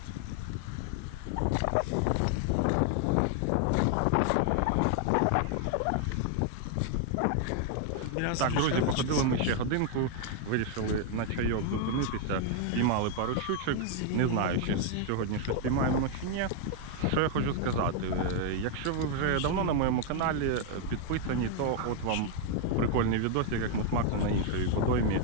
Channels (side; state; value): both; different; correlation 0.00